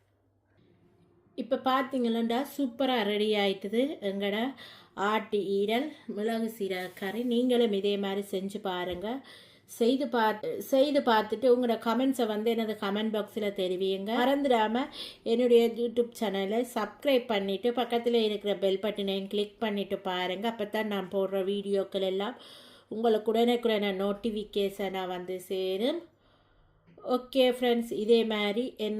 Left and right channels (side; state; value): both; identical; correlation 1.00